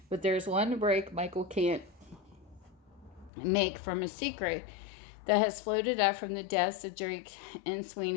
But there's one break Michael can't make from a secret that has floated up from the deaths of Drake and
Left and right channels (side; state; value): right; drops out; at 3.3 s